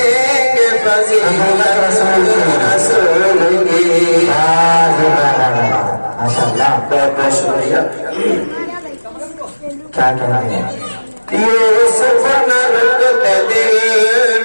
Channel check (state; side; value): inverted; both; correlation -1.00